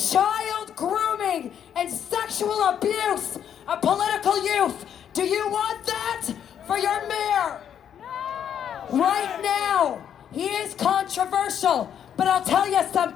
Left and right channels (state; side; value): quieter; right; 9.0 dB